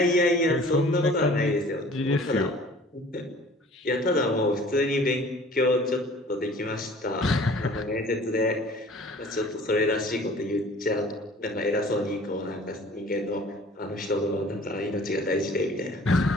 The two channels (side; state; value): both; normal; correlation 0.48